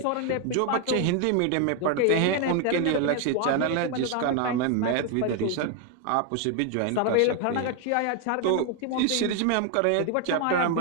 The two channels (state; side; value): different; both; correlation 0.01